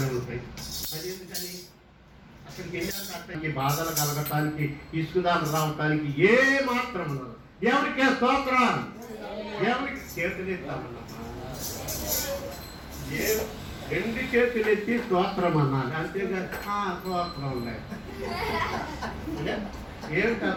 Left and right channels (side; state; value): both; identical; correlation 1.00